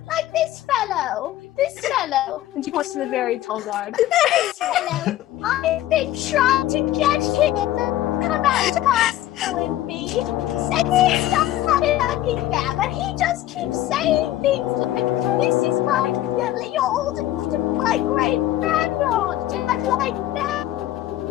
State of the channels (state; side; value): quieter; right; 14.0 dB